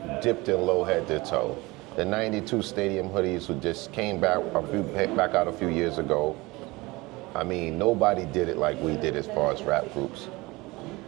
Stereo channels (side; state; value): left; quieter; 22.4 dB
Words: dipped in low head to toe. The 92 stadium hoodies who just came back out a few years ago. I mean, nobody did it like we did as far as rap groups.